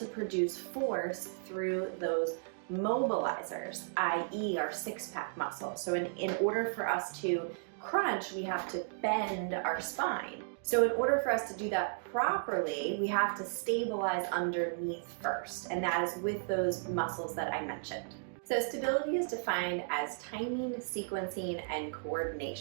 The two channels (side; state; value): left; silent; digital silence